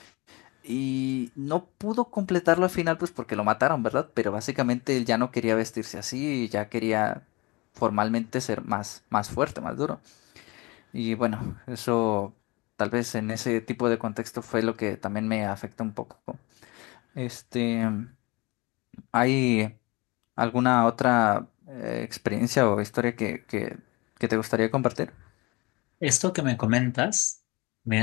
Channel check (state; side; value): quieter; right; 24.8 dB